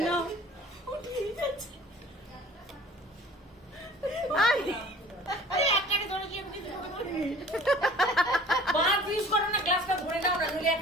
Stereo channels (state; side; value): normal; both; correlation 0.47